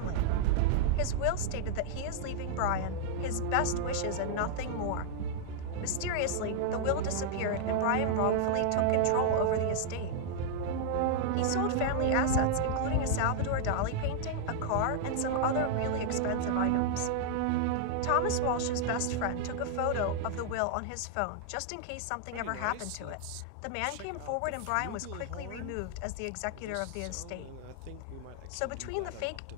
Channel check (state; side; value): different; both; correlation -0.01